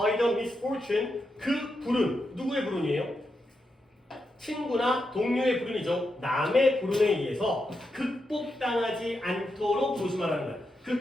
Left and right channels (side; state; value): both; normal; correlation 0.85